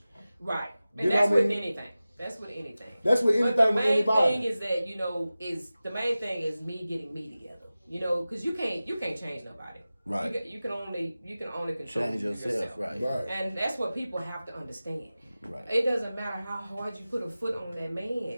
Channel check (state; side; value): inverted; both; correlation -0.96